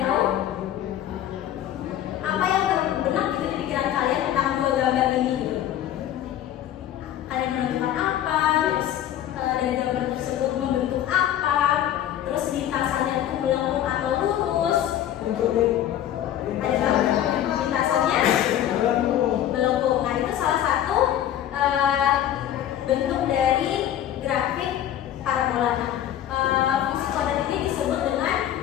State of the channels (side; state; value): right; quieter; 11.4 dB